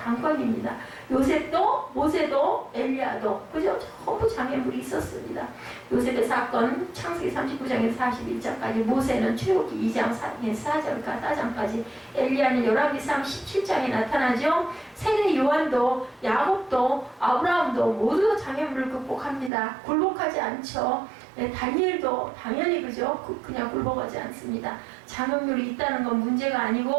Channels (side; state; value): left; drops out; at 19.5 s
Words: 요셉도, 모세도, 엘리야도, 그죠? 전부 장애물이 있었습니다. 요셉의 사건, 창세기 39장에서 41장까지, 모세는 출애굽기 2장 4절까지, 엘리야는 열왕기상 17장에 나타나죠. 세례 요한도, 야곱도, 아브라함도 모두 장애물을 극복합니다. 굴복하지 않죠. 다니엘도 당연히 그죠? 그냥 굴복하지 않습니다. 장애물이 있다는 건 문제가